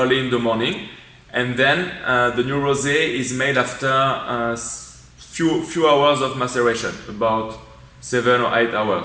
in the morning, and then the new rosé is made after few hours of maceration, about 7 or 8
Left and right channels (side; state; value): both; identical; correlation 1.00